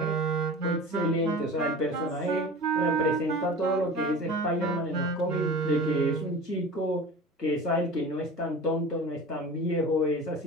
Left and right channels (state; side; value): normal; both; correlation 0.36